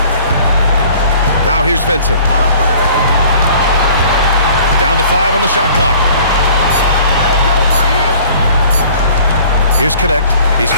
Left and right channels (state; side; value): inverted; both; correlation -0.51